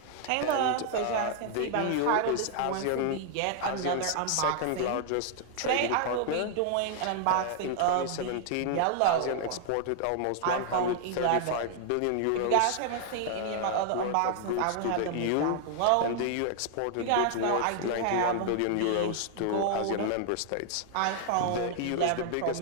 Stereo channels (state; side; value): different; both; correlation 0.00